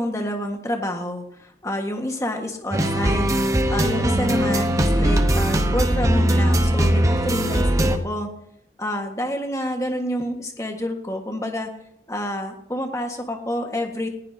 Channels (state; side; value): normal; both; correlation 0.82